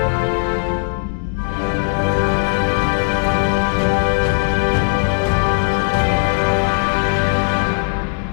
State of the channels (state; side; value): silent; right; 59 dB below the other